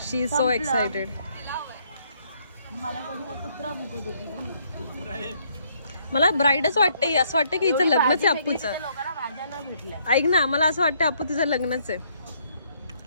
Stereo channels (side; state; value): both; inverted; correlation -0.69